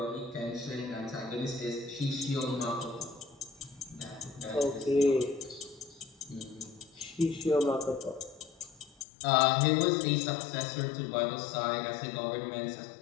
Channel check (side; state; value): right; drops out; at 9.1 s